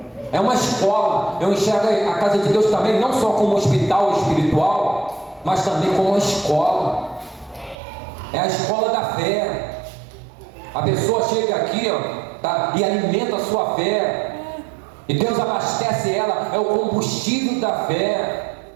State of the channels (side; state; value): left; drops out; at 7.8 s